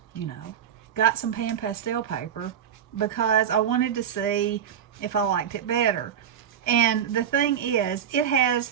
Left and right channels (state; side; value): quieter; left; 8.9 dB